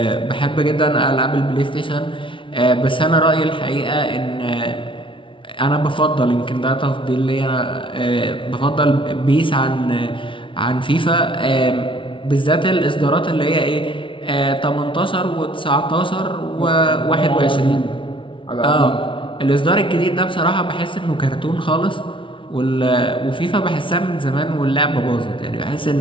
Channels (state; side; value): late; right; 0.25 ms